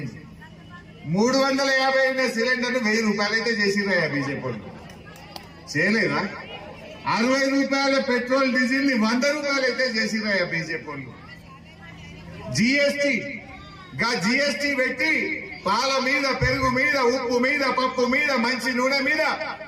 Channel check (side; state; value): both; identical; correlation 1.00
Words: 350 సిలిండర్ 1000 రూపాయలు అయితే చేసిండ్రా బీజేపీ వాళ్ళు? చేయలేదా? 60 రూపాయల పెట్రోల్ డీజిల్ ని 100 రూపాయలు అయితే చేసిండ్రా బీజేపీ వాళ్ళు? జిఎస్టీ పెట్టి పాల మీద, పెరుగు మీద, ఉప్పు మీద, పప్పు మీద, మంచి నూనె మీద